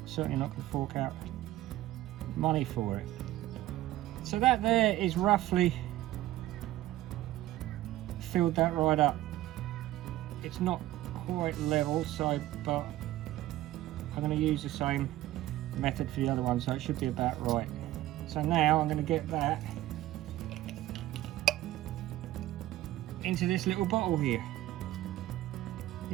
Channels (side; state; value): left; quieter; 15.3 dB